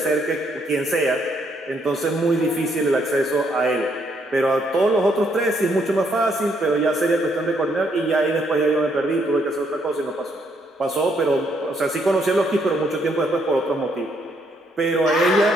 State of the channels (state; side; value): normal; both; correlation 0.72